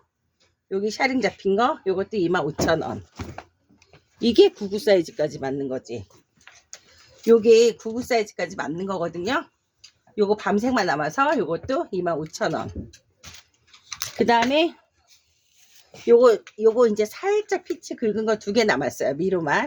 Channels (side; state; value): both; identical; correlation 1.00